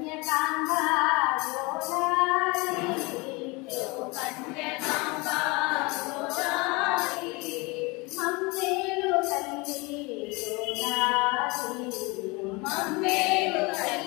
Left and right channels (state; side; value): quieter; right; 26.3 dB